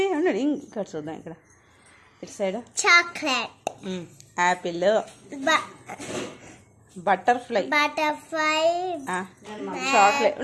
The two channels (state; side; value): identical; both; correlation 1.00